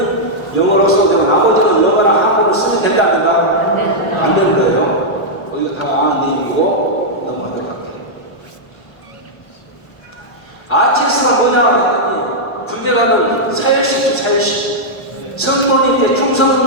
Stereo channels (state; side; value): late; right; 1.1 ms